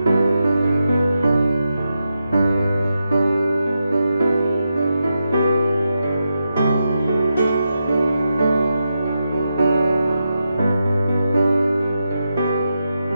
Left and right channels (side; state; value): both; inverted; correlation -0.87